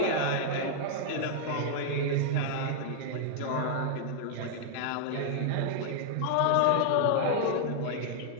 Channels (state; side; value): different; both; correlation -0.01